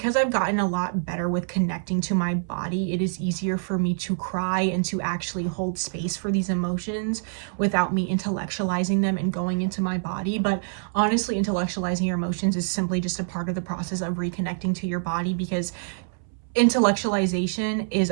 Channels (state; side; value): silent; left; 61 dB below the other